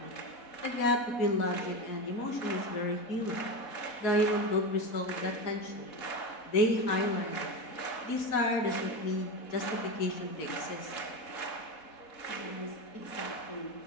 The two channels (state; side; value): late; right; 4.1 ms